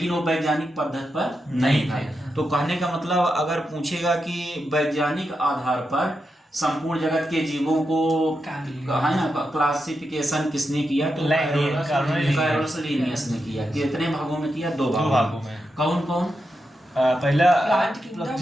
वो वैज्ञानिक पद्धति पर नहीं था। तो कहने का मतलब अगर पूछेगा कि वैज्ञानिक आधार पर संपूर्ण जगत के जीवों को है ना क्लासिफिकेशन किसने किया, तो कैरोलस लिनियस ने किया। कितने भागों में किया? 2 भागों में। कौन कौन? पहला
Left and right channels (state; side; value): normal; both; correlation 0.87